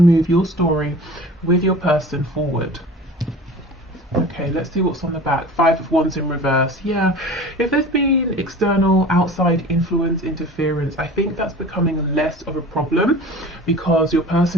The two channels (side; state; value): both; normal; correlation 0.39